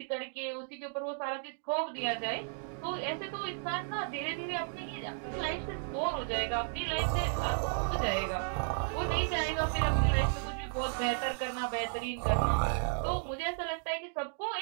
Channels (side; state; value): left; silent; digital silence